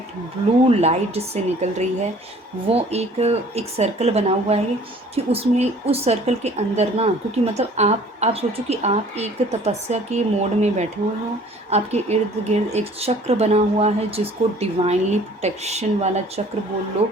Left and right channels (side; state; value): both; normal; correlation 0.52